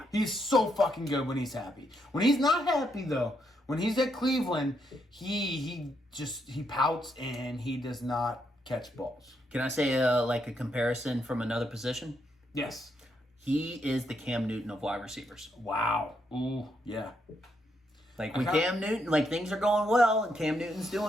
He's so fucking good when he's happy. When he's not happy, though, when he's at Cleveland, he pouts and he does not catch balls. Can I say like a comparison from another position? Yes. He is the Cam Newton of wide receivers. Wow. Ooh, yeah. Like when Cam Newton, like things are going well and Cam Newton's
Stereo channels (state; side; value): normal; both; correlation 0.78